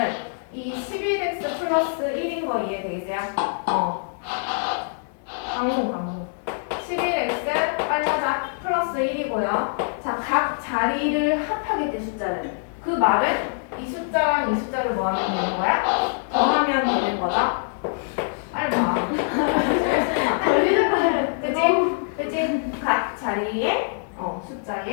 이 11x 플러스 1인 거 이해되겠어요? 방송 11x 빨라자 플러스 1이고요. 자, 각 자리를 합하겠대 숫자를. 그 말은 이 숫자랑 이 숫자를 뭐 하면 되는 거야? 더하면 되는 거다. 빨리 봐. 그치? 각 자리의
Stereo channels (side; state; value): right; silent; digital silence